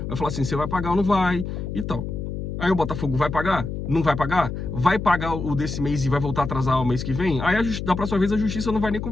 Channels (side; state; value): left; noise; hum, 5 dB below the sound